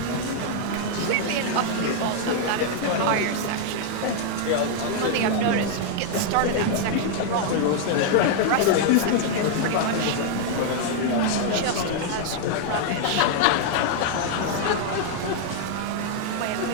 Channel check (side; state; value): both; different; correlation 0.00